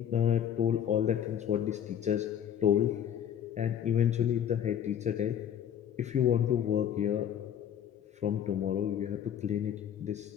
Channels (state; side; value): quieter; right; 9.5 dB